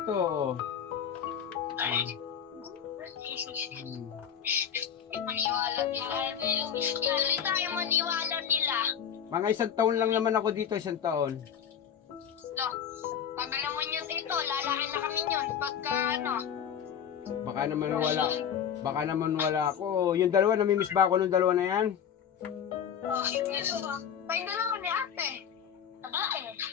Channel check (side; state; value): right; quieter; 8.5 dB